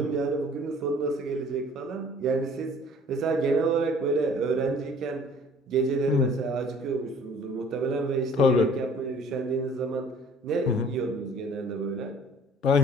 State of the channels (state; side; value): normal; both; correlation 0.52